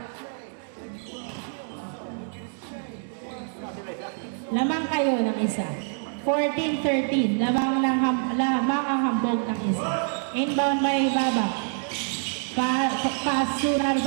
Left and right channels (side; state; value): left; silent; 61 dB below the other